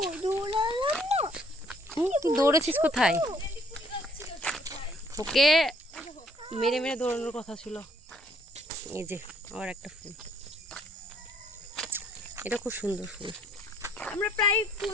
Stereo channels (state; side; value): normal; both; correlation 0.64